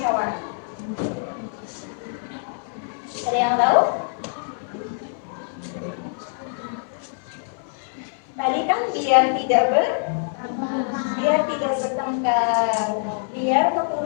Ada yang tahu? Tadi kan biar tidak bertengkar, biar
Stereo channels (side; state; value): right; silent; 59 dB below the other